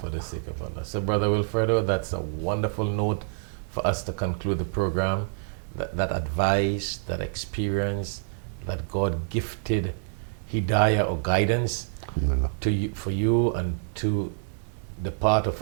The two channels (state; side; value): silent; left; digital silence